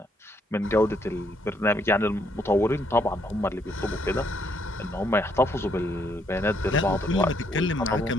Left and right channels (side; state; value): both; normal; correlation 0.72